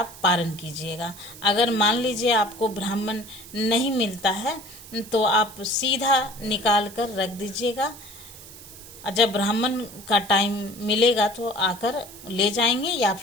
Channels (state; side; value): noise; right; hiss, 17 dB below the sound